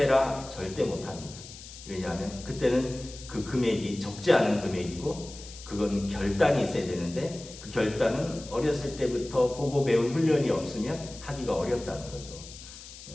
절대 못합니다. 왜냐하면 그때는 그 금액이 적지 않은 금액이고 그건 결단이 있어야 되는데, 그 결단은 어렸을 때부터 보고 배운 훈련이 없으면 하기가 어렵다는 거죠.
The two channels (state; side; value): noise; left; hiss, 15 dB below the sound